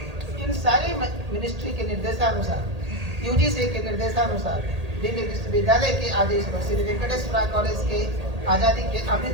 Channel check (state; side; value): late; left; 1.8 ms